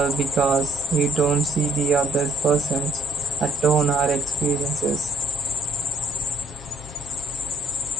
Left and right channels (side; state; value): both; normal; correlation 0.64